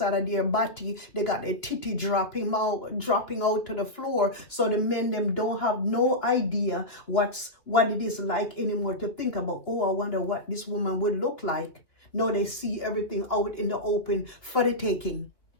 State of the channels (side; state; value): right; late; 2.6 ms